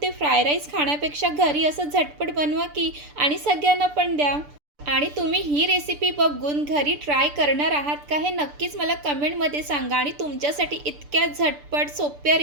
ते फ्राय राईस खाण्यापेक्षा घरी असं झटपट बनवा की आणि सगळ्यांना पण द्या। आणि तुम्ही ही रेसिपी बघून घरी ट्राय करणार आहात का हे नक्कीच मला कमेंटमध्ये सांगा। आणि तुमच्यासाठी इतक्या झटपट सोप्या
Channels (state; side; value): late; left; 6.8 ms